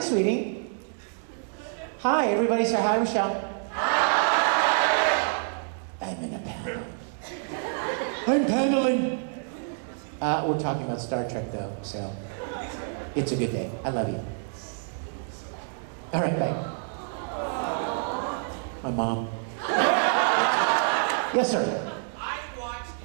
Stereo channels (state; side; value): silent; left; 60 dB below the other